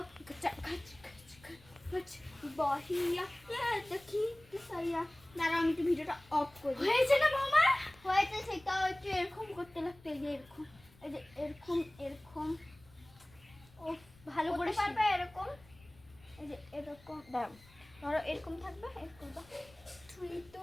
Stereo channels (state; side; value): noise; left; rumble, 25 dB below the sound